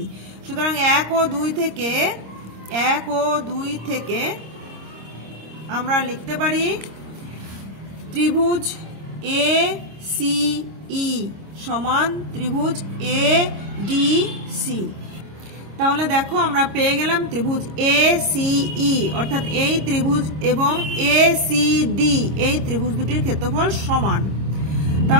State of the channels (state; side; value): late; left; 26 ms